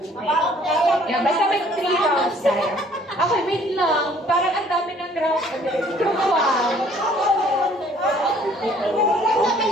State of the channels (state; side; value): normal; both; correlation 0.58